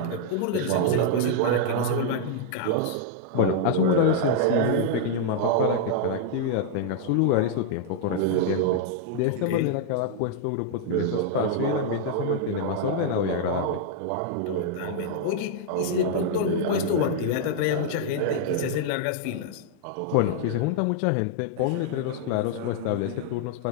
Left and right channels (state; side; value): different; both; correlation -0.01